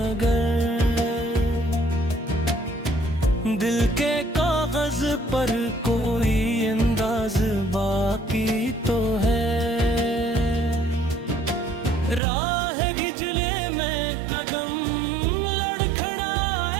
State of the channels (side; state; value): left; drops out; at 12.2 s